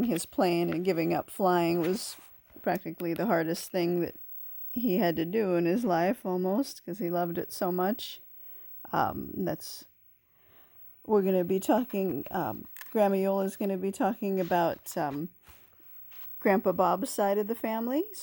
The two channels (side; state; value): both; identical; correlation 1.00